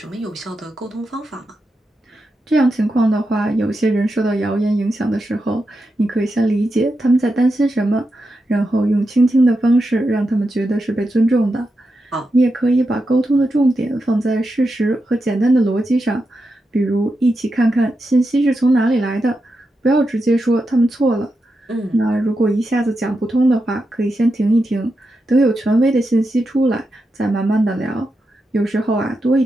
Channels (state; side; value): normal; both; correlation 0.88